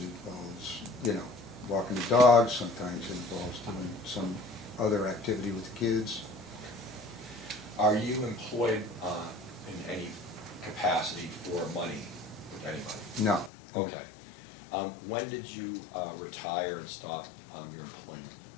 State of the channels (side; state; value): right; drops out; at 13.5 s